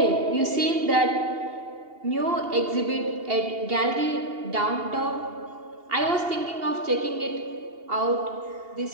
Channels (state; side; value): late; left; 2.8 ms